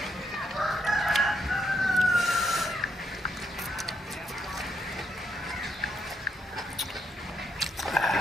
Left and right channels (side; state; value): both; normal; correlation 0.77